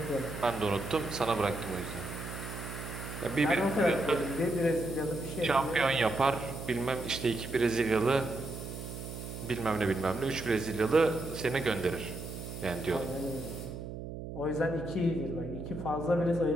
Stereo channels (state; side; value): noise; right; hum, 8 dB below the sound